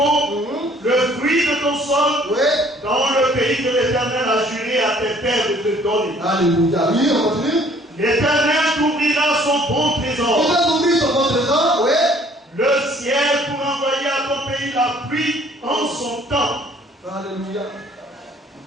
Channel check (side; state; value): both; normal; correlation 0.58